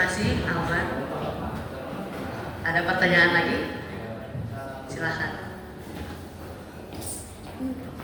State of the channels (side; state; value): both; identical; correlation 1.00